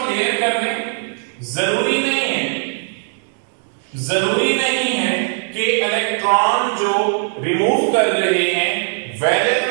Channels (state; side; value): silent; left; digital silence